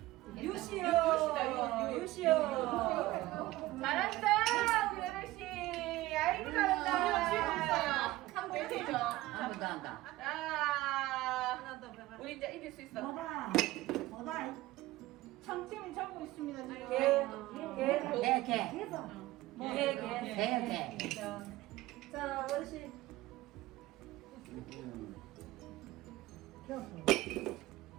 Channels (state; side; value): quieter; left; 17.6 dB